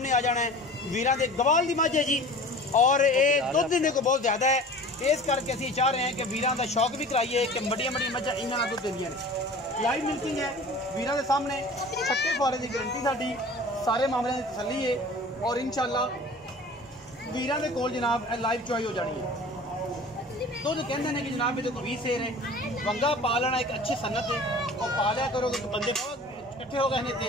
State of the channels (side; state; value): both; normal; correlation 0.42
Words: आ जाना है। वीरां दे गवाल दी मझ है जी, और ये दुध देने को बहुत ज़्यादा है, इस करके असीं चाह रहे हैं कि वीरां दा शौक भी कराइए कि बड़ियां बड़ियां मझां इन्हां नाल दुध देंदियां ने। लाइव मिल्किंग है वीरां दे सामने, छट्टे फुआरे की गारंटी साडी, सारे मामले की तसली है। और इंशाअल्लाह वीरां दे कोल जनाब लाइव चुआई हो जानी है। दुध कहते हैं कि जनाब ये 20 सेर है, वंगा पा लेना एक अच्छी सन्नत है, और पा लिया करो कि बंदे इकट्ठे हो गए